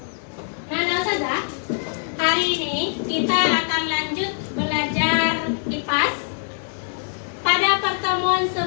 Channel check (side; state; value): right; silent; digital silence